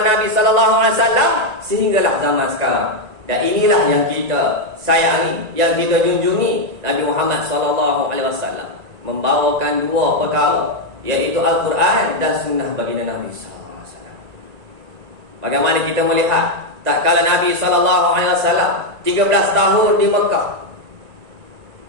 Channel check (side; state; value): left; late; 1.9 ms